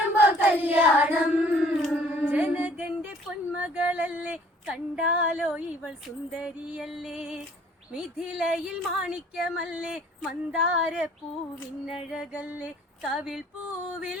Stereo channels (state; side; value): normal; both; correlation 0.56